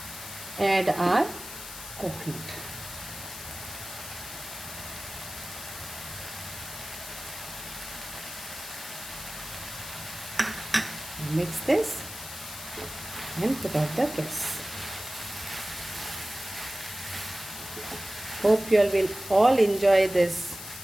add our coconut. Mix this and put out the gas. Hope you all will all enjoy this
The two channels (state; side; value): noise; left; hiss, 11 dB below the sound